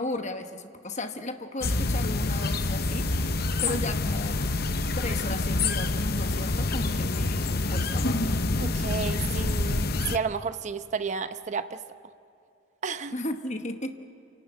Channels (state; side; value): normal; both; correlation 0.60